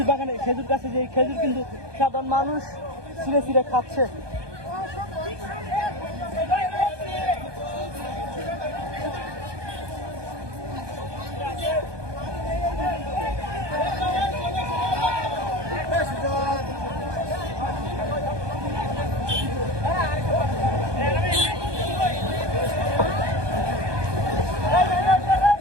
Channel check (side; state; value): left; late; 1.2 ms